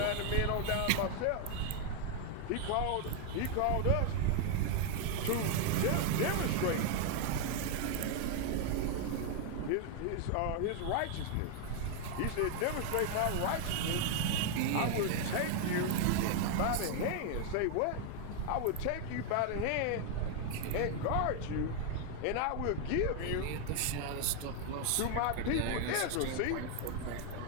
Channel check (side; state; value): both; different; correlation 0.00